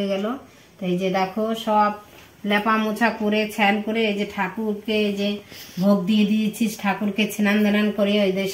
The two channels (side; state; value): both; identical; correlation 1.00